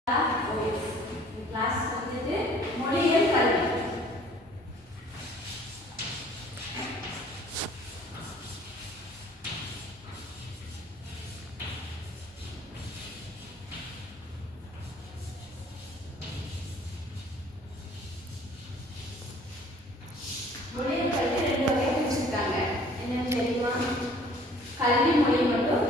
Class வந்துட்டு மொழியியல் கல்வி. மொழியியல் கல்வி ரெண்டு வகையா பிரிச்சிருக்காங்க. என்னன்னு தெரியுமா? கல்வி மொழி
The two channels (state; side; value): normal; both; correlation 0.54